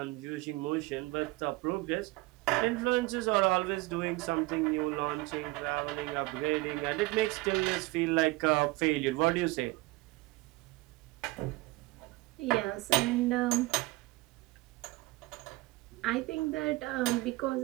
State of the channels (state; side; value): quieter; left; 20.9 dB